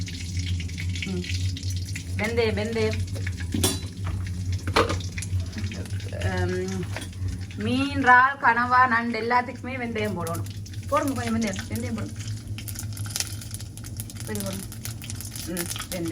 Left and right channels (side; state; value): both; identical; correlation 1.00